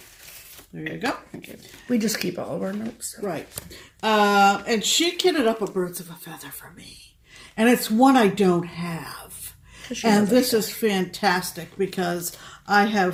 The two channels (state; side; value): identical; both; correlation 1.00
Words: There you go. Okay. We just keep all of our notes. Right. And she kitted up a Birds of a Feather for me. And it's one I don't have. And this is fantastic because I